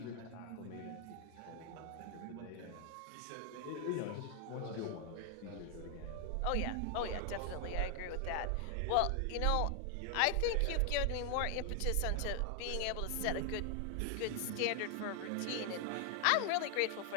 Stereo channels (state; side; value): different; both; correlation 0.00